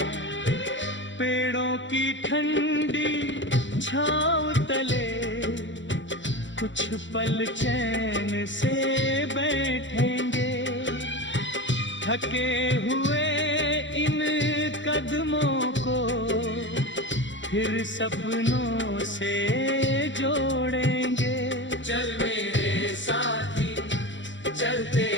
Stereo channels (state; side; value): late; right; 0.54 ms